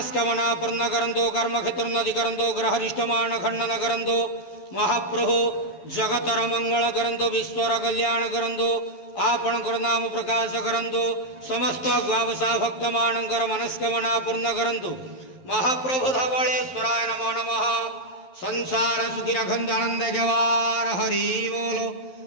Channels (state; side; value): late; right; 11 ms